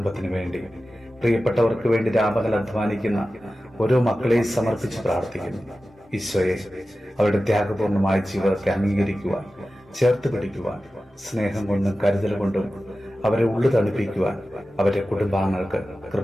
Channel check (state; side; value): normal; both; correlation 0.94